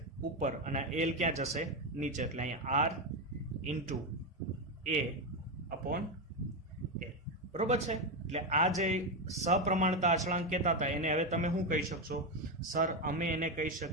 ઉપર, અને એલ ક્યાં જશે? નીચે. એટલે અહીંયા આર ઇન્ટુ એ અપોન એલ. બરોબર છે? એટલે આ જે સપ્રમાણતા અચળાંક કહેતા હતા એને હવે તમે શું કહી શકશો? સર, અમે એને કહી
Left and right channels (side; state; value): both; normal; correlation 0.10